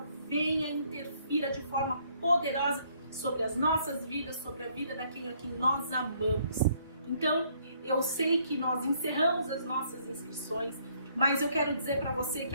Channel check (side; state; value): both; inverted; correlation -0.66